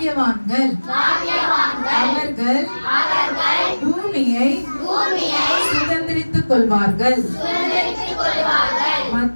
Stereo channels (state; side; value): inverted; both; correlation -1.00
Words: அவர்கள் பூமியை சுதந்திரித்துக் கொள்வார்கள்